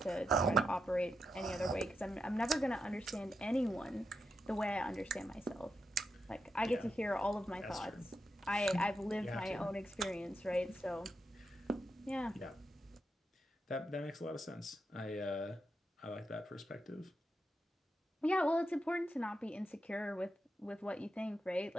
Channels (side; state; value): both; normal; correlation 0.85